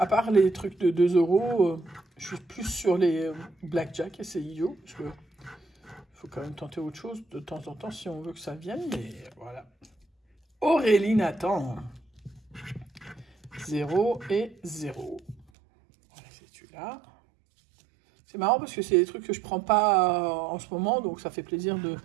part les trucs de 2 €, je suis plus sur les blackjack et c'est idiot. Parce que faut quand même tenter autre chose de temps en temps si on veut que ça vienne. Mais voilà. Aurélie Nathan. 0 et 0. Voilà, c'est celui-là. C'est marrant parce que c'est des trucs que je prends pas en ce moment, donc ça fait plaisir de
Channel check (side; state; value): left; drops out; at 15.5 s